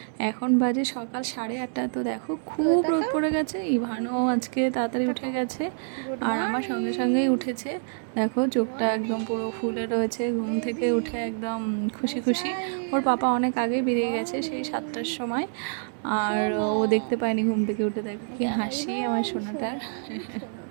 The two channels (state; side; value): silent; left; 60 dB below the other